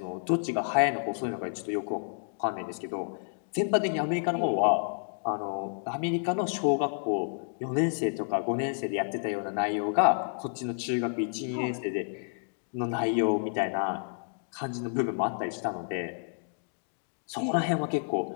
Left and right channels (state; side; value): silent; right; digital silence